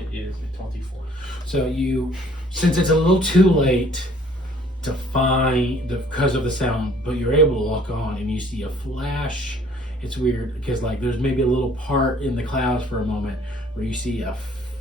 is a 24. So since it's a little too late to find because of the sound, but you're able to look on and you see a flash. It's weird because like there's maybe a little part in the clouds for a moment where you see a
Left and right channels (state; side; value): normal; both; correlation 0.57